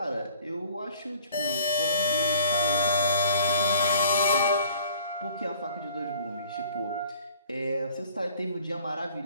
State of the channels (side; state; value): both; inverted; correlation -0.53